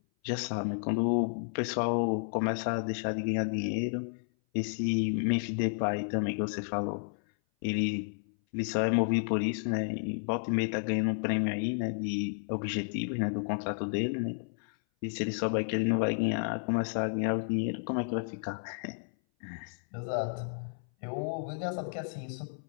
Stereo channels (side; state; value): right; silent; 57 dB below the other